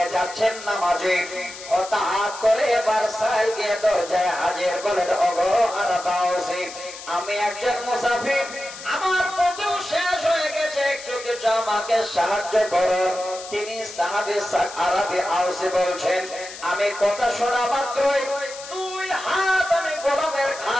যাচ্ছেন নামাজে। হঠাৎ করে এবার সাহেব গিয়ে দরজায় হাজির বলেন, ওগো আরাবাসী, আমি একজন মুসাফির, আমার পথও শেষ হয়ে গেছে, একটু কিছু আমাকে সাহায্য করুন। তিনি সাহাবী আরাবী আউসী বলছেন, আমি কথা শোনা মাত্রই দুই হাত আমি গোলামের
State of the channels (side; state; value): left; noise; hiss, 13 dB below the sound